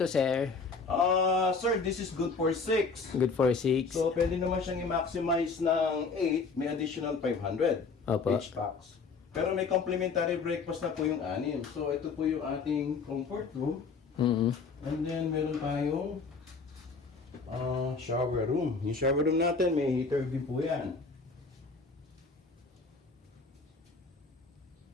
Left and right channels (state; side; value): quieter; right; 4.6 dB